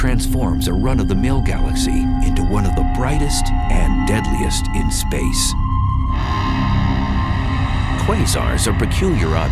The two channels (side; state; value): both; identical; correlation 1.00